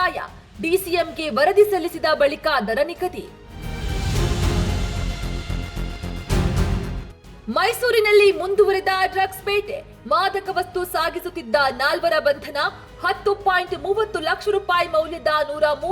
ಡಿಸಿಎಂಗೆ ವರದಿ ಸಲ್ಲಿಸಿದ ಬಳಿಕ ದರ ನಿಗದಿ. ಮೈಸೂರಿನಲ್ಲಿ ಮುಂದುವರೆದ ಡ್ರಗ್ಸ್ ಬೇಟೆ, ಮಾದಕ ವಸ್ತು ಸಾಗಿಸುತ್ತಿದ್ದ 4 ಬಂಧನ, 10.30 ಲಕ್ಷ ರೂಪಾಯಿ ಮೌಲ್ಯದ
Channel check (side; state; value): both; identical; correlation 1.00